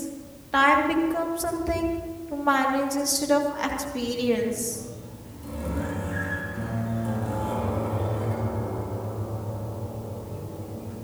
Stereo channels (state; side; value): identical; both; correlation 1.00